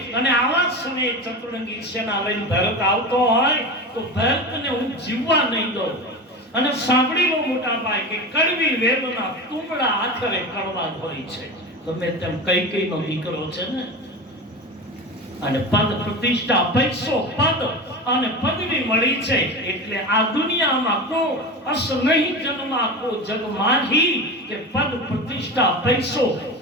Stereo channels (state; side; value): normal; both; correlation 0.27